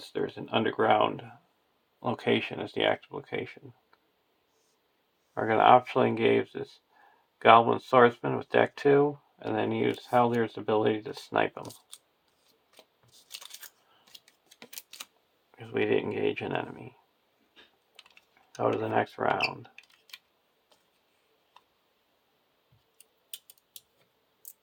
there's an underground location as the active location. We're going to optionally engage this Goblin Swordsman with deck 2, and then use Haldyr's ability to snipe him. because we didn't engage an enemy. Go to the next round.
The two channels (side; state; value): both; identical; correlation 1.00